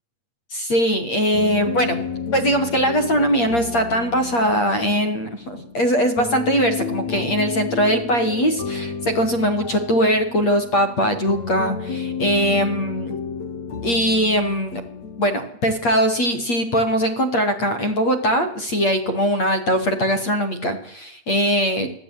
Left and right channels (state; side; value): late; right; 8.5 ms